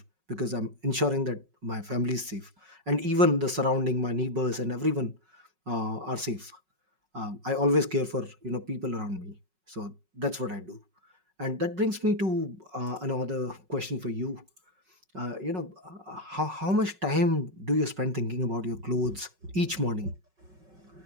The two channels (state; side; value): late; left; 5.4 ms